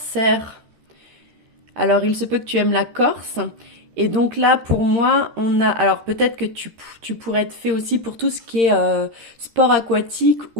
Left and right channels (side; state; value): left; late; 13 ms